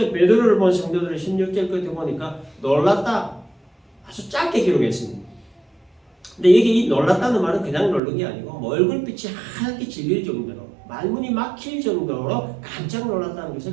베드로를 본 성도들은 16절 끝에 보니까 놀랐다. 아주 짧게 기록했습니다. 근데 이게 이 놀랐다는 말은 그냥 놀란 게 아니고 얼굴빛이 하얗게 질릴 정도로 말문이 막힐 정도로 깜짝 놀랐다는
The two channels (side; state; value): left; drops out; at 8.0 s